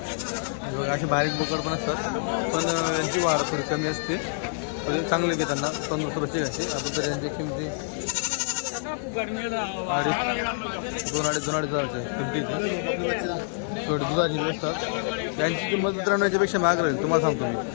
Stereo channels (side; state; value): right; silent; digital silence